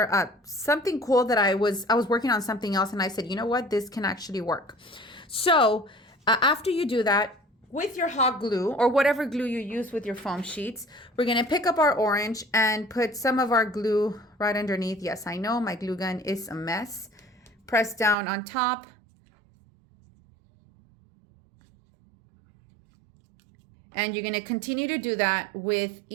something cool that I was working on something else, and I said, you know what, this can actually work. So after you do that, with your hot glue or whatever glue you use with your foam sheets, we're going to pick up our orange and put some of our glue right underneath. Yes, I know my glue gun is a mess. Press down on top. And you're going to continue to do that with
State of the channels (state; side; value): drops out; left; at 18.2 s